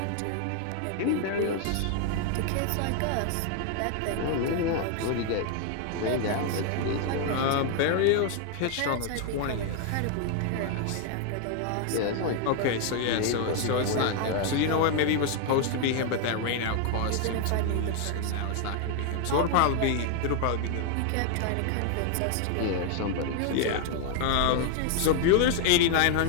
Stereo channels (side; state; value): both; different; correlation 0.00